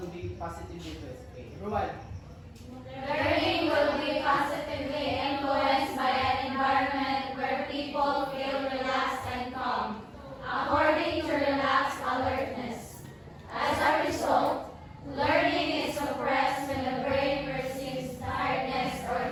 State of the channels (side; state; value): both; identical; correlation 1.00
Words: be positively influenced? Okay, everyone. Learning will be positively influenced by an environment where people feel relaxed and calm, according to relaxed alertness. As a result, learning is suppressed when the brain perceives tiredness or